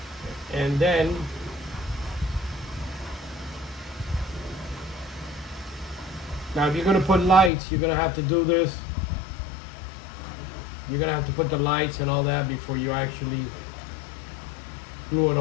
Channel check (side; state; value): right; drops out; at 7.5 s